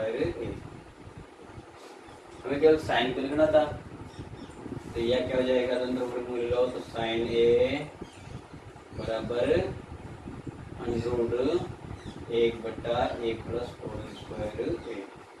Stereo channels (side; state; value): both; identical; correlation 1.00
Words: ए। हमें केवल साइन को लिखना था, तो यह क्या हो जाएगा, दोनों वर्गमूल लो, तो साइन ए बराबर √1/1 प्लस कोट स्क्वायर ए,